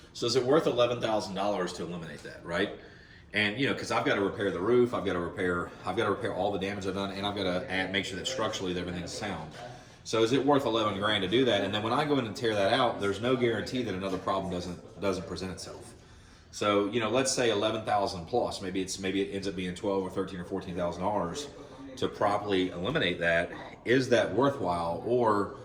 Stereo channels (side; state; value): both; identical; correlation 1.00